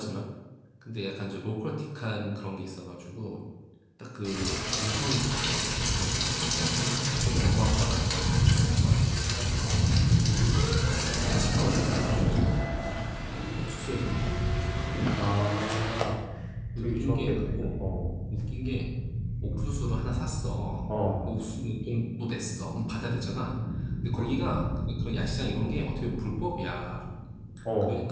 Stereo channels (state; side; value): identical; both; correlation 1.00